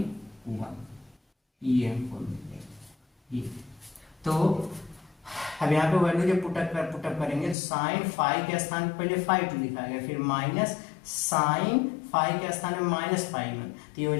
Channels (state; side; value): drops out; right; at 7.6 s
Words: 1, ये हमको मिलेगा ये। तो अब यहाँ पे वैल्यू जब पुटअप करेंगे साइन फाई के स्थान पे पहले फाई 2 लिखा गया, फिर माइनस साइन फाई के स्थान में माइनस फाई 1, तो ये हो